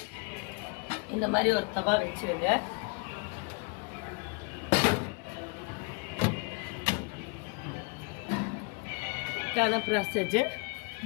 இந்த மாதிரி ஒரு தவா வச்சிருங்க. ப்ராசஸ்.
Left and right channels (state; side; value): quieter; right; 32.1 dB